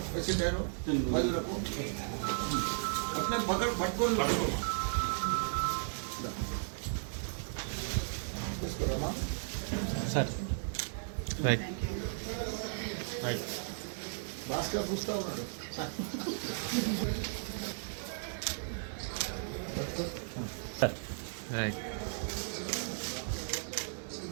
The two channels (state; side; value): silent; left; digital silence